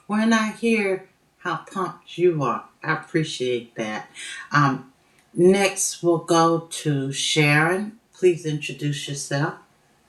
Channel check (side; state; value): both; identical; correlation 1.00